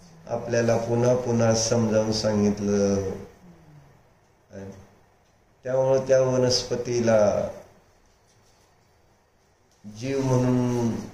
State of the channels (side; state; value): both; identical; correlation 1.00